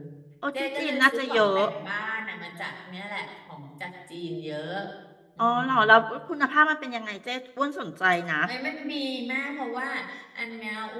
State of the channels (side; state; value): both; identical; correlation 1.00